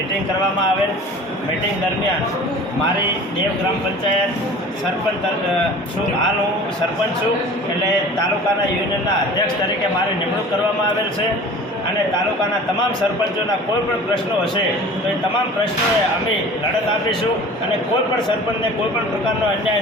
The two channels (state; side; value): normal; both; correlation 0.42